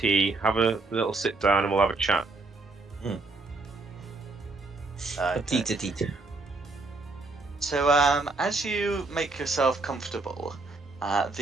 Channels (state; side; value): quieter; left; 3.5 dB